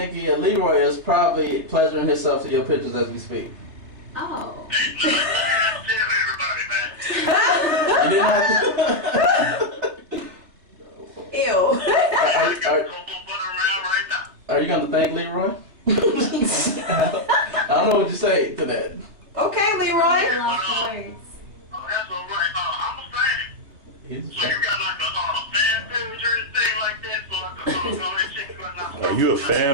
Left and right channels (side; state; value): left; late; 3.4 ms